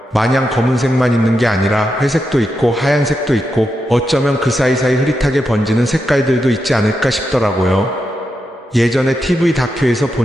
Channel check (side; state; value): both; normal; correlation 0.86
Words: 마냥 검은색만 있는 게 아니라 회색도 있고 하얀색도 있고 어쩌면 그 사이사이 흐릿하게 번지는 색깔들도 있지 않을까 싶더라고요. 예전에 TV 다큐에서